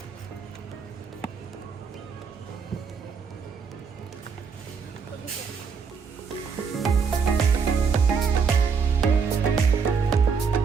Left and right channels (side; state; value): left; quieter; 5.8 dB